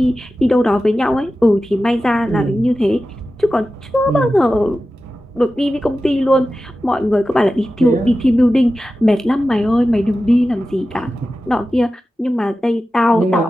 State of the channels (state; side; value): normal; both; correlation 0.94